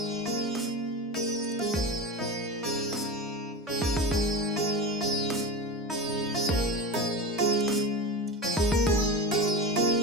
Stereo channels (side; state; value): both; normal; correlation 0.26